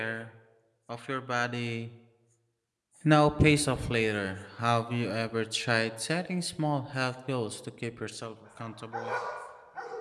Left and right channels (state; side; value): identical; both; correlation 1.00